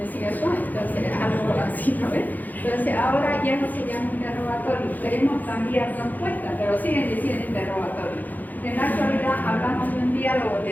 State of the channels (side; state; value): right; late; 0.083 ms